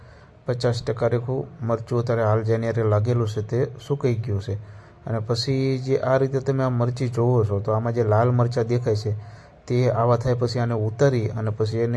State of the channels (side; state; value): both; identical; correlation 1.00